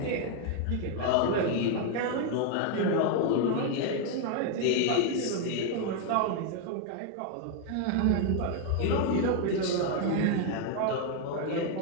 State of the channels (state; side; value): different; both; correlation 0.01